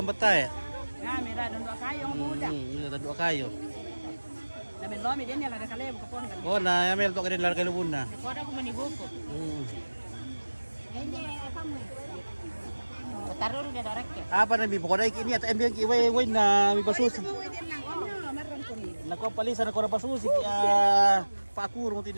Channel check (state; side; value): inverted; both; correlation -1.00